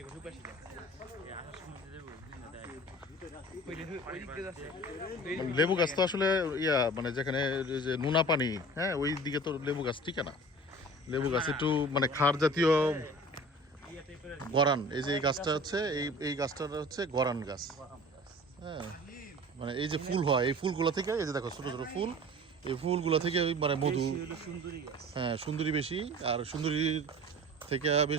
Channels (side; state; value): both; normal; correlation 0.42